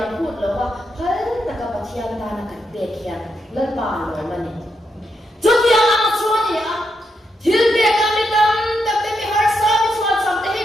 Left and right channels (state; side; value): normal; both; correlation 0.82